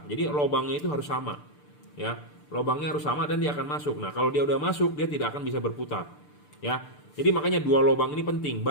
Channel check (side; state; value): right; late; 6.8 ms